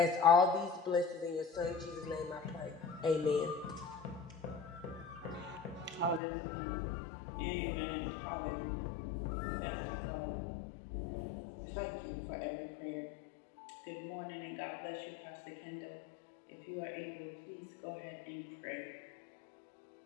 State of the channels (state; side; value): drops out; right; at 6.2 s